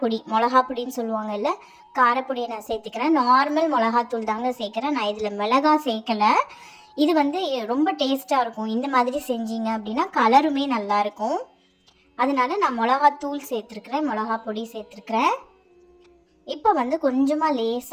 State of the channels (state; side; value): identical; both; correlation 1.00